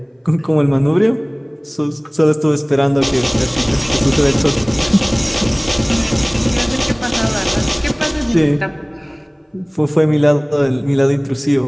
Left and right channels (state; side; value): identical; both; correlation 1.00